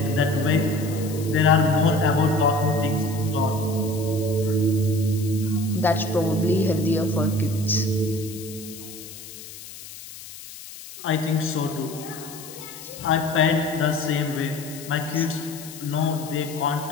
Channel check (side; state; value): left; noise; hiss, 14 dB below the sound